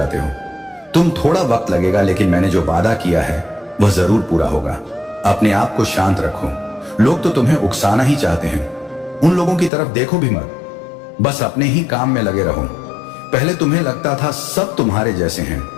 हो। तुम थोड़ा वक्त लगेगा, लेकिन मैंने जो वादा किया है वह जरूर पूरा होगा। अपने आप को शांत रखो। लोग तो तुम्हें उकसाना ही चाहते हैं। उन लोगों की तरफ देखो भी मत। बस अपने ही काम में लगे रहो। पहले तुम्हें लगता था सब तुम्हारे जैसे हैं,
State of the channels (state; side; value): drops out; right; at 9.7 s